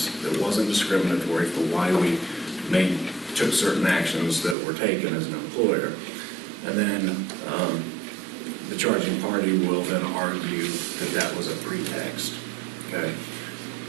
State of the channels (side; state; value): left; drops out; at 4.5 s